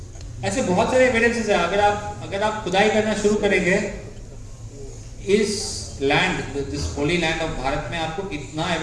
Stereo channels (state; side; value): identical; both; correlation 1.00